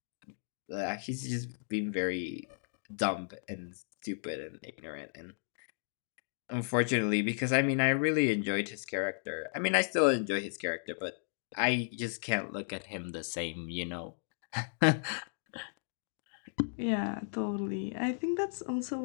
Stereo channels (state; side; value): silent; right; digital silence